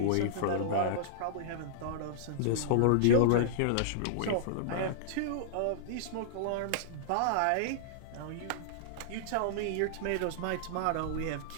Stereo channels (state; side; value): different; both; correlation -0.02